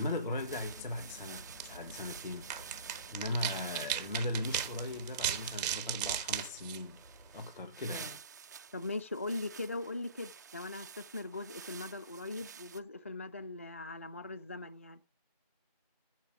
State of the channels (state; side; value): inverted; both; correlation -0.43